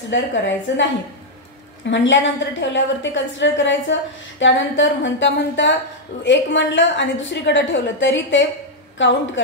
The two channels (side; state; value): both; normal; correlation -0.02